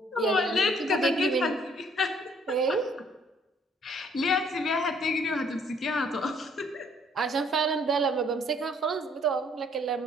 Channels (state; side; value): normal; both; correlation 0.63